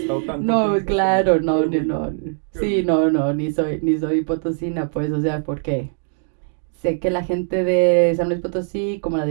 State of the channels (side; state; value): left; silent; digital silence